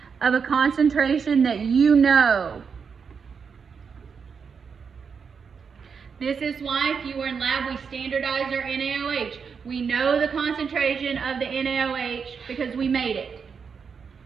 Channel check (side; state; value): left; quieter; 6.1 dB